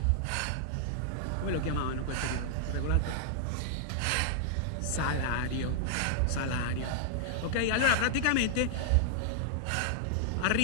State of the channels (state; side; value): different; both; correlation -0.01